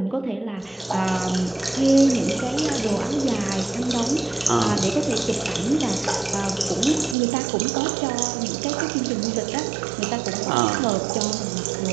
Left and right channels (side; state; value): left; drops out; at 7.2 s